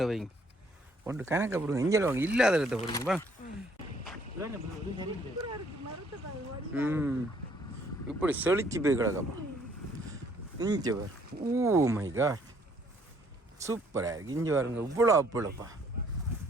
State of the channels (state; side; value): normal; both; correlation 0.64